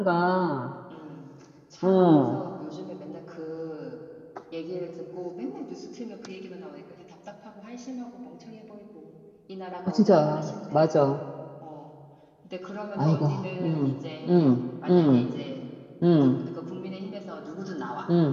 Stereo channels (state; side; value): identical; both; correlation 1.00